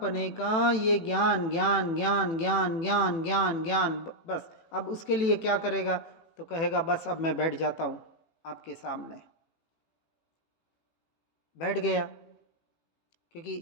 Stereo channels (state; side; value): late; right; 18 ms